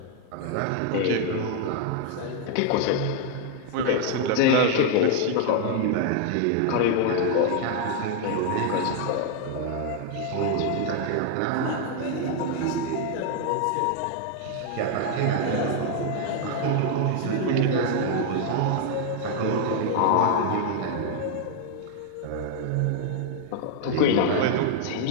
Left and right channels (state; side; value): different; both; correlation 0.00